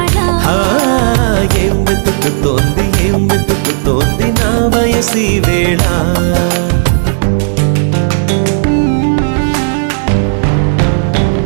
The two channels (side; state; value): left; silent; digital silence